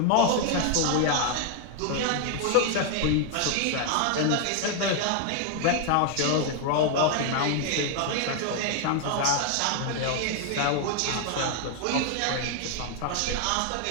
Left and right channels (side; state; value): both; different; correlation 0.00